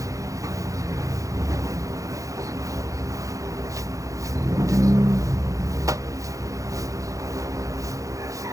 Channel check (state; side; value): late; left; 0.16 ms